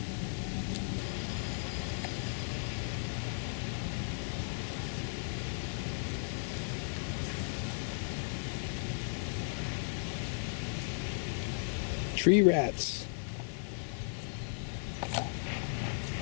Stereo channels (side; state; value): right; silent; 54 dB below the other